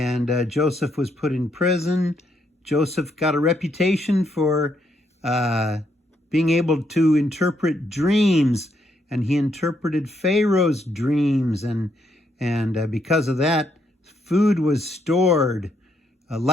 Joseph was put in prison. Joseph got a reputation for being able to interpret dreams, and he interpreted Pharaoh's dreams, and because of that, food was stored,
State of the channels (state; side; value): normal; both; correlation 0.75